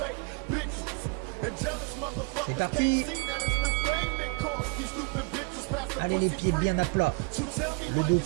C'est parti. Allez, les pieds bien à plat. Le dos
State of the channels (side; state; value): left; quieter; 32.3 dB